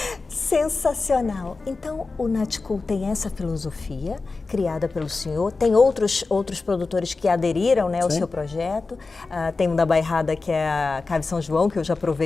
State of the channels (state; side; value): quieter; right; 3.9 dB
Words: Sensacional. Então, o Natcool tem essa filosofia criada pelo senhor. Tem outros produtores que aderiram, né, ao seu projeto. Tem um da Bairrada, que é a Cave São João, que eu já